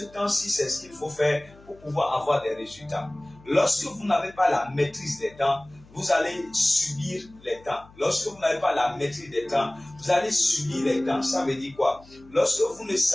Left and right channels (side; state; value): left; noise; hum, 25 dB below the sound